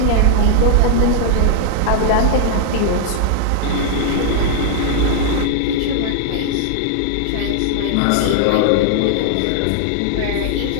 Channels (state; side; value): different; both; correlation 0.00